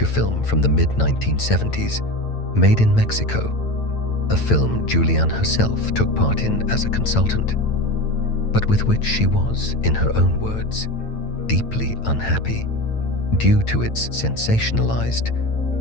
film from the mid-1970s, Made in Mexico, a film Juliane herself took part in as a consultant, but with which she was, in her own words, deeply unhappy due to its sensationalized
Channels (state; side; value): late; right; 8.9 ms